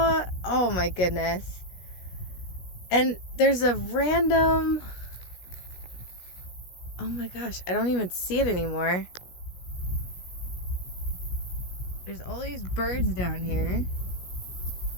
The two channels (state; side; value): late; right; 16 ms